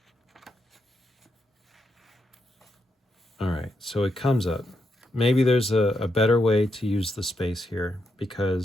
All right, so it comes up. Maybe there's a better way to use the space here,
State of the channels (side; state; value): both; normal; correlation 0.81